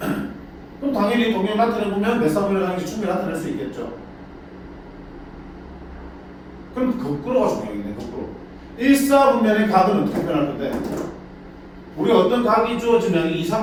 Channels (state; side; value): identical; both; correlation 1.00